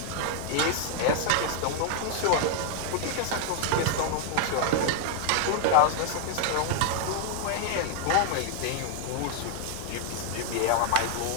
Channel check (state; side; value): different; both; correlation 0.00